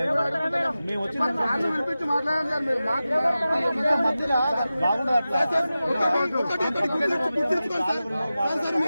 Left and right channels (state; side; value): inverted; both; correlation -0.94